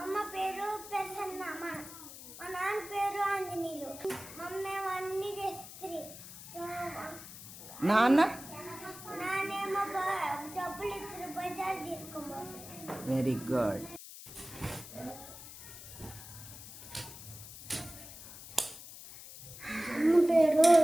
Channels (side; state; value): left; noise; hiss, 14 dB below the sound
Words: అమ్మ పేరు ప్రసన్న. మా నాన్న పేరు ఆంజనేయులు. మమ్మేమో అన్ని చేస్తుంది. నానేమో డబ్బులు ఇద్దరు బజార్ తీసుకోబోతుంది. Very good.